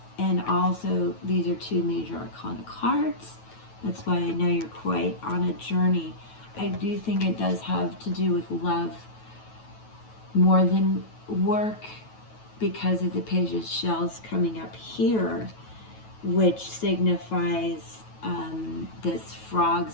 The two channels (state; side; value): late; right; 9.2 ms